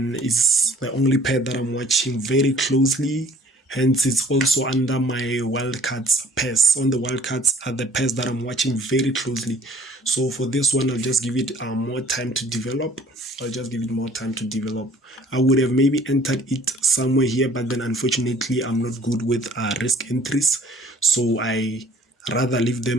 it's the only pair that I'm watching very closely. Hence, it's also under my wildcards pairs. On the wildcards are the pairs that I'm watching very closely. So for this one, I'll just give it more time to develop. I would have maybe entered it somewhere here, but then unfortunately, I'm not good with risk entries. So I rather leave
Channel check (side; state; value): both; normal; correlation 0.55